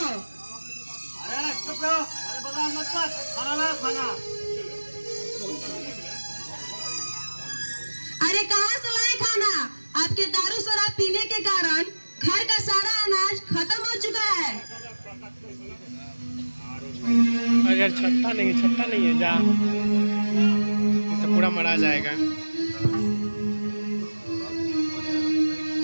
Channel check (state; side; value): inverted; both; correlation -1.00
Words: अरे चुप रहो, अरे बगान मत कर, खाना ला खाना। अरे कहाँ से लाए खाना? आपके दारू शराब पीने के कारण घर का सारा अनाज खत्म हो चुका है। अगर छट्टा नहीं है जा, तो पूरा मरा जाएगा।